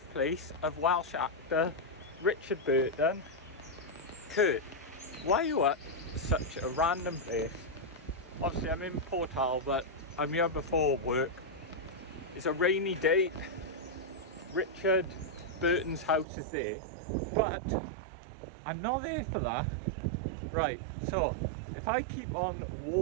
of Welsh actor Richard Burton. Kurt, why are you at such a random place? Obviously I'm in Pontywood, but I'm here before work. It's a rainy day. Richard Burton's house is there, but I'm not there for that. Right, so if I keep on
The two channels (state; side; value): drops out; left; at 16.2 s